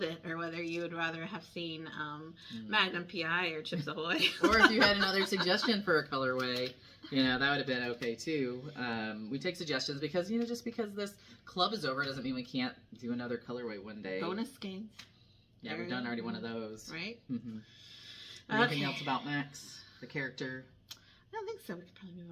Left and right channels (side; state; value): both; identical; correlation 1.00